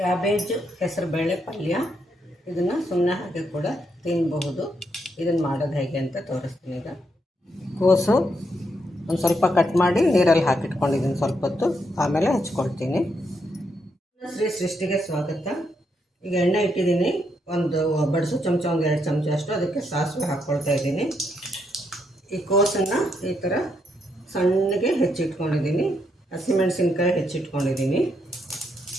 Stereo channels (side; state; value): both; normal; correlation 0.78